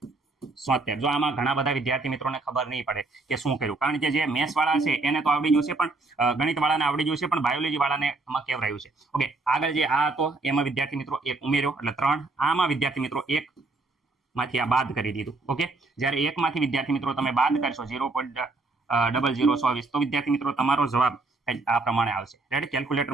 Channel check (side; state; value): left; quieter; 3.4 dB